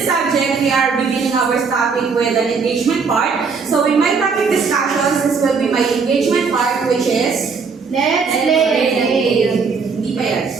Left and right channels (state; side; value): quieter; left; 5.2 dB